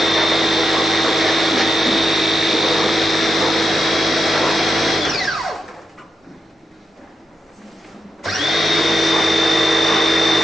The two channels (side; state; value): both; normal; correlation 0.87